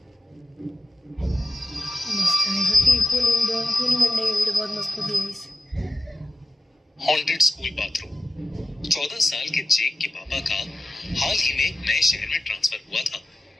मस्त है, सच्ची खूनी मंडे की वीडियो बहुत मस्त होती है इस। Haunted school bathroom. 14 साल के जेक के पापा का हाल ही में एक नए शहर में ट्रांसफर हुआ था,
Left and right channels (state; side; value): normal; both; correlation 0.93